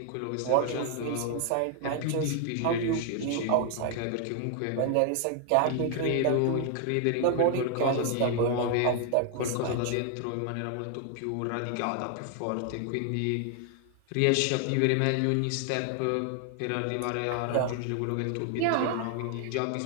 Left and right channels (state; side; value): different; both; correlation 0.00